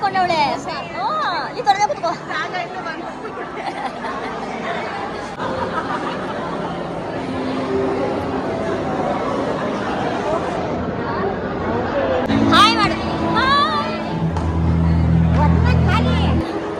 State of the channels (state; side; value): identical; both; correlation 1.00